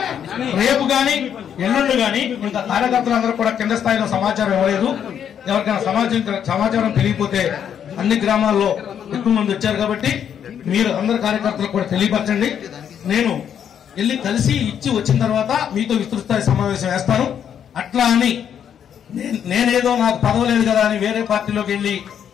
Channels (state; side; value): quieter; right; 8.7 dB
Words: రేపు గాని ఎల్లుండి గాని ఇంకా కార్యకర్తలందరూ కూడా కింద స్థాయిలో సమాచారం ఇవ్వలేదు. ఎవరికైనా సమాచారం తెలియకపోతే అన్ని గ్రామాల్లో ఎక్కువ మంది వచ్చారు కాబట్టి మీరు అందరు కార్యకర్తలకు కూడా తెలియపరచండి. నేను వెళ్ళి కలిసి ఇచ్చి వచ్చిన తర్వాత మీతో విస్తృత స్థాయి సమావేశం వేస్తాను. అట్లా అని నేనేదో నాకు పదవి లేదు కదా అని వేరే పార్టీలోకి వెళ్ళి